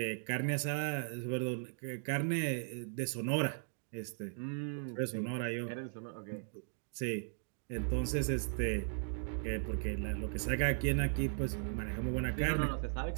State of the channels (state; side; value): silent; left; digital silence